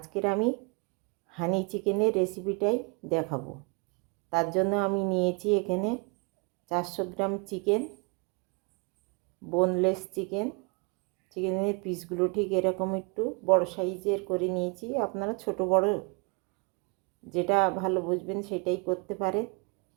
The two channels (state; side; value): quieter; left; 32.4 dB